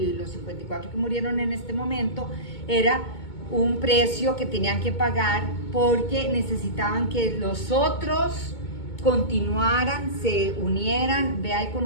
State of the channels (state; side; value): late; right; 2.2 ms